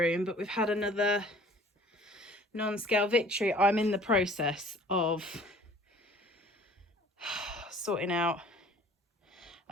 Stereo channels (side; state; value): both; normal; correlation 0.51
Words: but we've had another non-scale victory. I'm in the process of sorting out